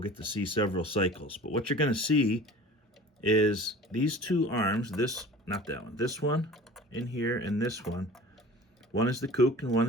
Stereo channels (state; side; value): normal; both; correlation 0.42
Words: get to see several cycles. But what you're going to see is these two arms, not that one, this one in here and this one. One is the cook and one